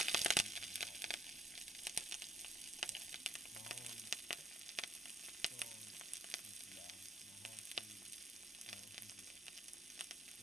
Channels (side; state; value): both; normal; correlation 0.67